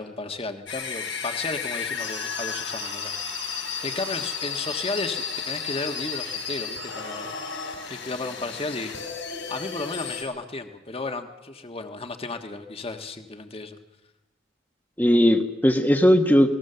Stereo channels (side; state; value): both; normal; correlation 0.69